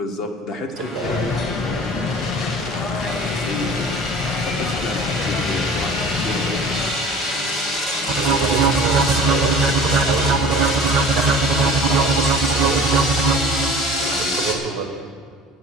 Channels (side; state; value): both; normal; correlation 0.43